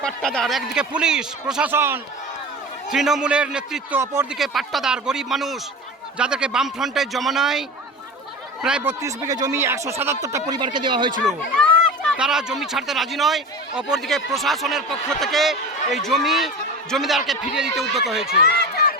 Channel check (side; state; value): both; normal; correlation 0.31